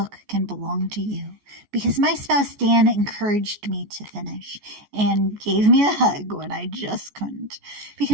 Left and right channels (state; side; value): late; left; 14 ms